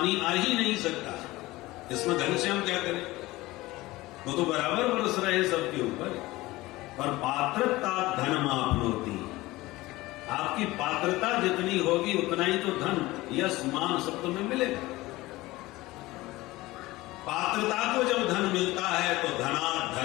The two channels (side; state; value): right; quieter; 19.3 dB